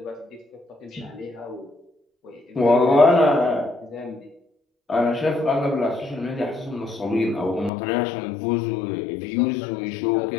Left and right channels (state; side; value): drops out; right; at 7.7 s